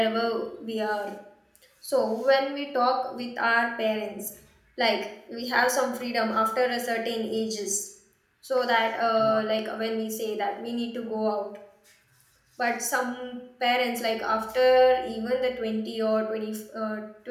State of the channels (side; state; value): both; identical; correlation 1.00